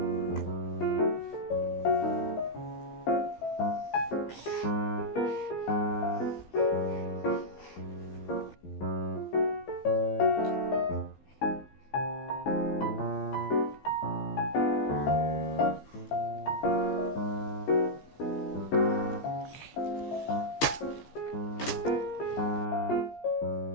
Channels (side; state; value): right; late; 15 ms